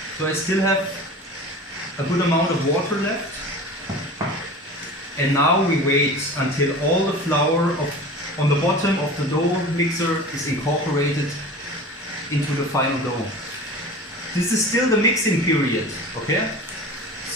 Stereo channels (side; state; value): both; normal; correlation 0.37